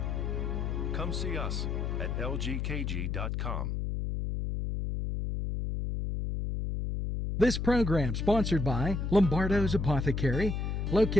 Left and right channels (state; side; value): noise; left; hum, 1 dB below the sound